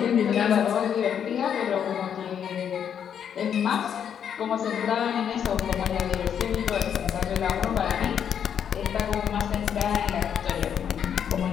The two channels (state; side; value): quieter; right; 8.4 dB